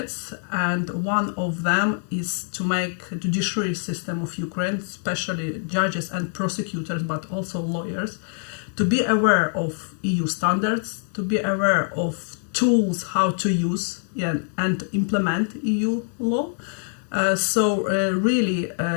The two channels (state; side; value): silent; right; 62 dB below the other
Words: and one of them is to make judiciary system of Ukraine, especially judges and prosecutors, but also lawyers, to be aware of EU standards, to be aware of tools how to use and implement EU law. Really,